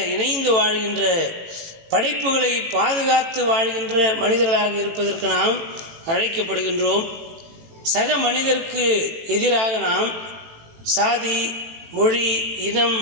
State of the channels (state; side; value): late; left; 18 ms